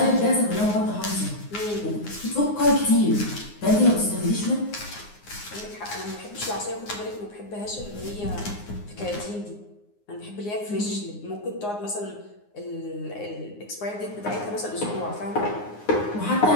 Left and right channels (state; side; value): late; right; 9.7 ms